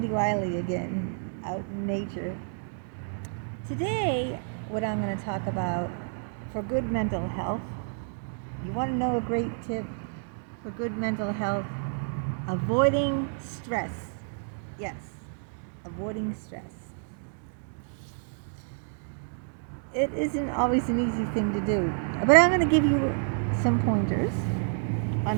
Wiley again, out in nature. Today, what I'm going to talk about for good mental health, you want to know a great tip for good mental health? Avoiding stress. Yes, avoiding stress. It isn't always an easy thing to do, but I'm going to give you some pointers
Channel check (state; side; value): silent; left; digital silence